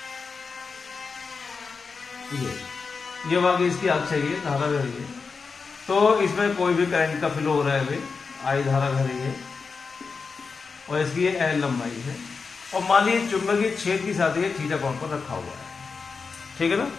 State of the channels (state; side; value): quieter; right; 4.9 dB